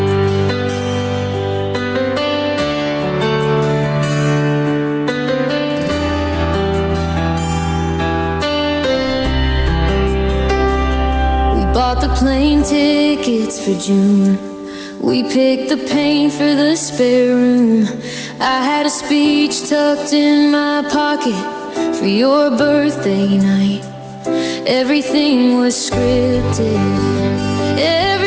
We bought the plane tickets for June. We picked the paint for the spare room. I had a speech tucked in my pocket for your birthday night. Everything was scripted,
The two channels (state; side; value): identical; both; correlation 1.00